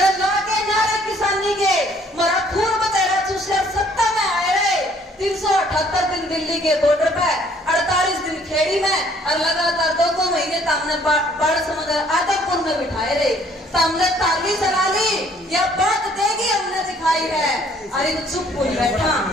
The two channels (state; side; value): normal; both; correlation 0.61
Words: के नारे किसानी के मरा खून बतेरा चूसकर सत्ता में आए रहे। 378 दिन दिल्ली के बॉर्डर पे, 48 दिन खेड़ी में और लगातार 2 महीने तामने बाढ़ समुद्र आदमपुर में बिठाए रहे। तामने ताली चला ली, यह बात देगी हमने दिखाई है। अरे वो चुप कोई बैठा,